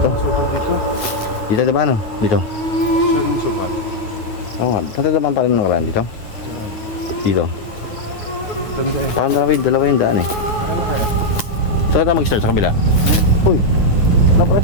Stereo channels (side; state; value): right; late; 9.5 ms